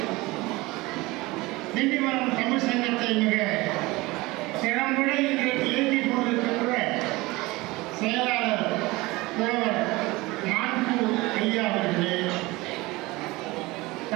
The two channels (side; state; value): left; quieter; 21.5 dB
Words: திண்டிவனம் தமிழ் சங்கத்தை மிக திறம்பட இன்றைக்கு இயக்கிக் கொண்டிருக்கின்ற செயலாளர் புலவர் மான்பூர் ஐயா அவர்களே,